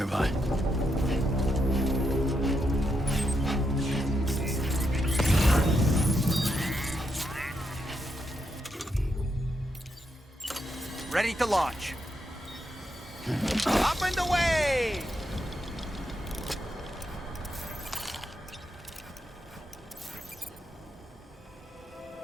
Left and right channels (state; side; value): normal; both; correlation 0.81